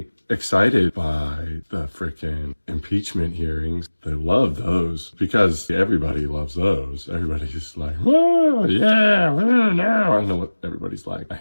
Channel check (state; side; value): inverted; both; correlation -1.00